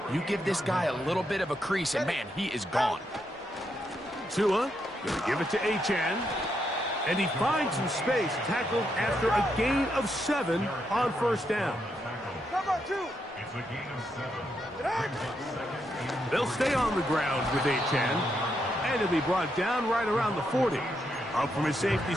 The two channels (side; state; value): both; normal; correlation 0.80